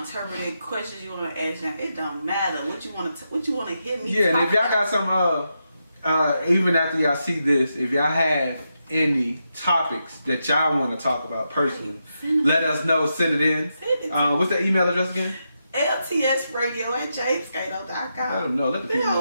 to interpret, questions you want to ask them, it don't matter. What you want to hit me. Yeah, and if y'all got some, even after y'all see this, if y'all have any topics that y'all want to talk about personally, let us know. Send it in. What's the email address again? LTS Radio at jamescato.com. Let them know. Let the people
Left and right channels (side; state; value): both; inverted; correlation -0.85